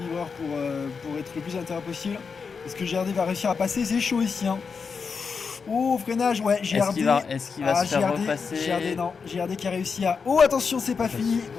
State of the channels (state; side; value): quieter; right; 5.5 dB